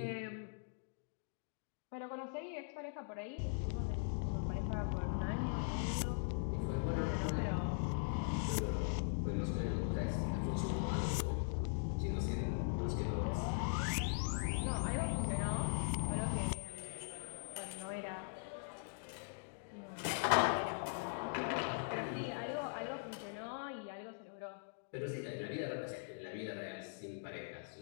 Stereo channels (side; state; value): right; silent; digital silence